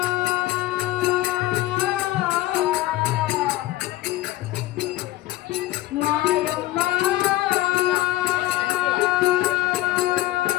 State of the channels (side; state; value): right; quieter; 16.6 dB